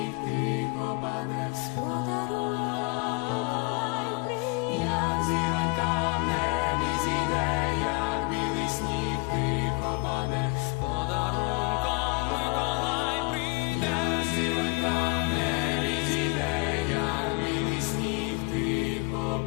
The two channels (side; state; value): right; quieter; 30.7 dB